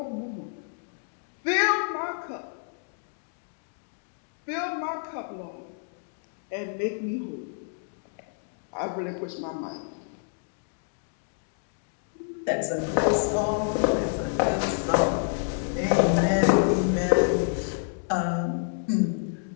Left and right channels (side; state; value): right; silent; digital silence